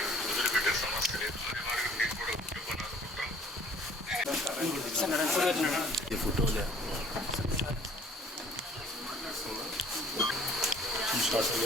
వదిలిపెట్టే సమస్య లేదు. మీకు కూడా కుటుంబాన్ని అనుకుంటాం. ఫోటోలే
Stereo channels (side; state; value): both; normal; correlation 0.54